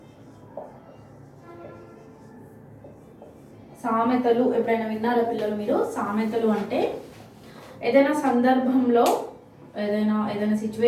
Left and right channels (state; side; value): identical; both; correlation 1.00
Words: సామెతలు ఎప్పుడైనా విన్నారా పిల్లలు మీరు? సామెతలు అంటే ఏదైనా సందర్భంలో ఏదైనా